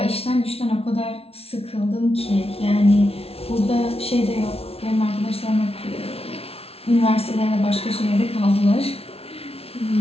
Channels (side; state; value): right; late; 0.29 ms